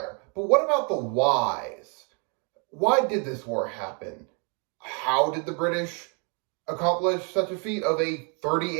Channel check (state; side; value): quieter; left; 36.1 dB